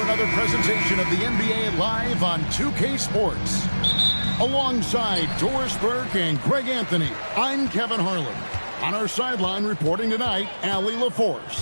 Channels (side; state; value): both; inverted; correlation -1.00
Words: another presentation of the NBA Live on 2K Sports. Alongside Doris Burke and Greg Anthony, I'm Kevin Harlan. On our sideline reporting tonight, Allie